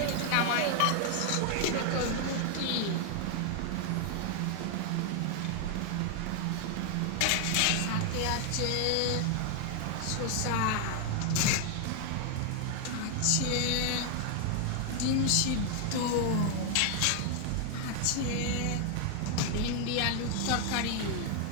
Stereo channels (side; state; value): both; different; correlation 0.00